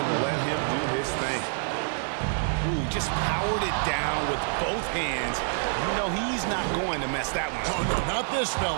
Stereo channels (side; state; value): left; silent; 60 dB below the other